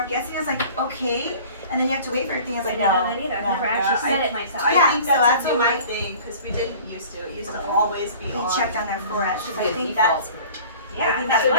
guessing. I was like, okay. And then you have to wait for everything. I was I like, didn't no. know that either. I've no. never actually Yeah, said it myself. I Yeah, think so that's that's a what newer my- thing because we didn't used to. It used to always be We on. checked on their foreheads. So I Good think default. that's I Yeah, think that's that's what what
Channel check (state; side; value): inverted; both; correlation -0.45